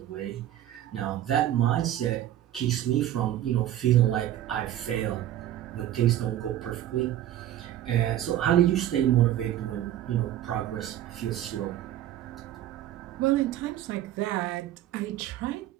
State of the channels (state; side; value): quieter; left; 12.4 dB